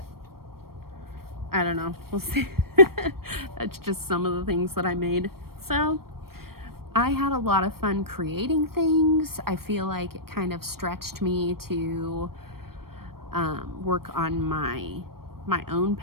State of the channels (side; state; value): left; late; 0.94 ms